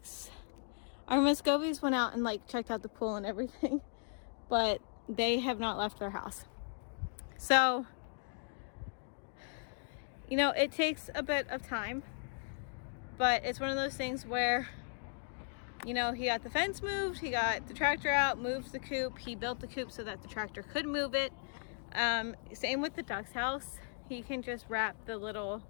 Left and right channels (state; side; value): silent; right; digital silence